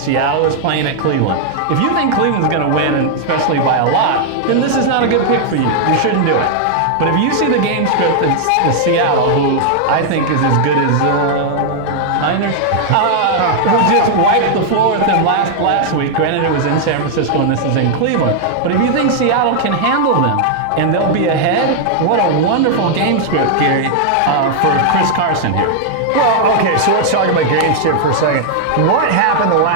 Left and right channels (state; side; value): different; both; correlation -0.01